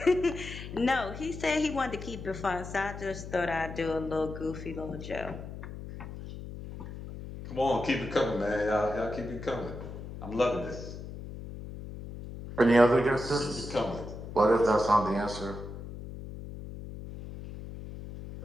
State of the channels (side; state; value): left; noise; hum, 10 dB below the sound